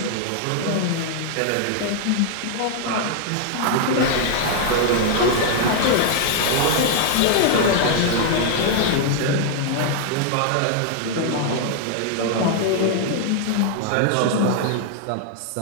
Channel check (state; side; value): different; both; correlation 0.00